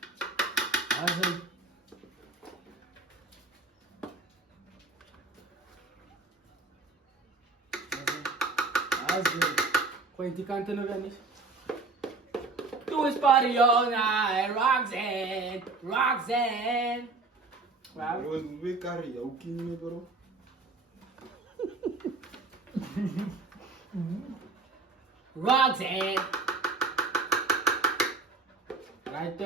Azai. Azai. Gooi die kanten nog wel niet. Doe eens party all night, Roxanne. Wow. Bro, we karaoke niet, bro. Roxanne. Right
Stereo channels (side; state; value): left; quieter; 3.7 dB